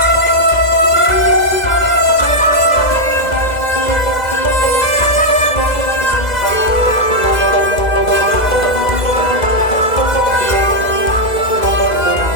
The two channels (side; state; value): right; late; 2.0 ms